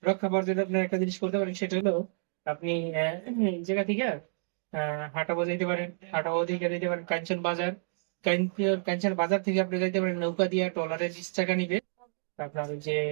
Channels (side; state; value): left; silent; digital silence